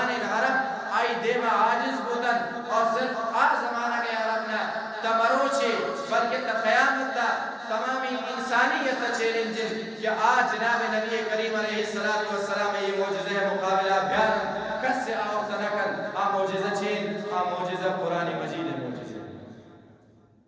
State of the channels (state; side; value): identical; both; correlation 1.00